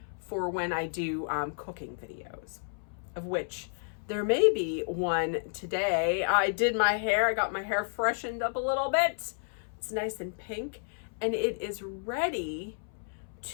for when I do cooking videos, of which there may be one today. I did my hair. I got my hair freshened up a little bit. It's nice and pink, and it is ready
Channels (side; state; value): right; silent; 57 dB below the other